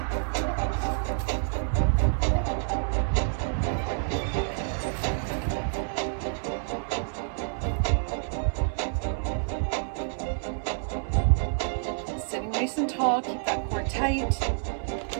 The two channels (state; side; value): silent; left; digital silence